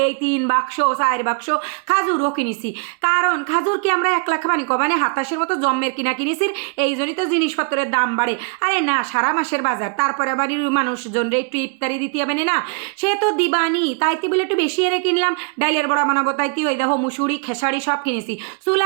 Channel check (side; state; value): left; quieter; 37.9 dB